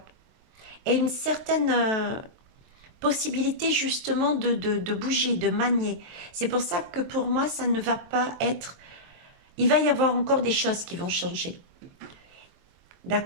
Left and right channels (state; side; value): late; left; 23 ms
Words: et une certaine possibilité justement de bouger, de manier. C'est pour ça que pour moi, ça ne va pas être... Il va y avoir encore des choses qui vont changer.